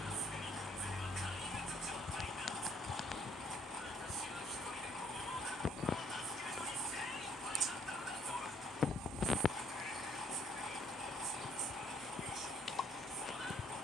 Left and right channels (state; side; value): normal; both; correlation 0.65